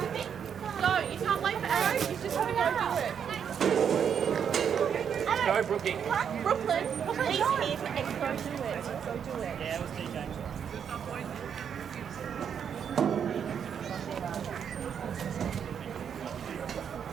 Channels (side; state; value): left; quieter; 7.8 dB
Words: Go, you can't wait for arrows, you just have to go do it. Go, Brookie. Brooklyn, he's here for X, go do it. Go do it. Yeah, it was TJ.